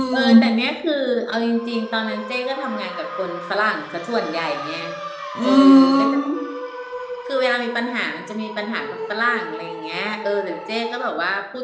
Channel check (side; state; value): both; identical; correlation 1.00